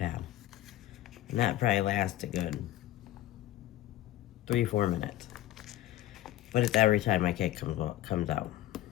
And that probably lasts a good 3-4 minutes. But it's every time my kid comes out.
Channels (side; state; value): right; quieter; 14.3 dB